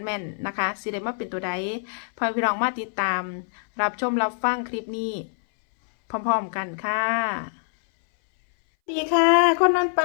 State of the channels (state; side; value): silent; right; 60 dB below the other